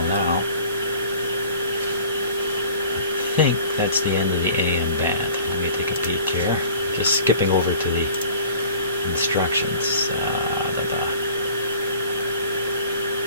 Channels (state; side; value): inverted; both; correlation -0.47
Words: now. I think that's the end of the AM band. Let me take a peek here. Just skipping over to the instructions.